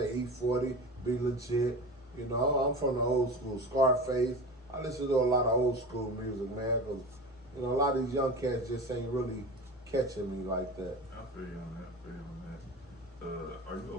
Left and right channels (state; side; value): normal; both; correlation 0.31